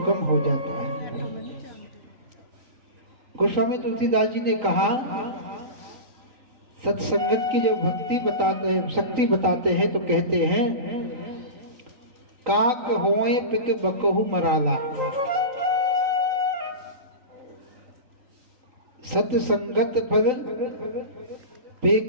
हो जाता है। गोस्वामी तुलसीदास जी ने कहा, सत्संगत की जब भक्ति बताते हैं, शक्ति बताते हैं तो कहते हैं, काक होए पिक बकहु मराला, सत्संगत फल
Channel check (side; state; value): left; late; 3.9 ms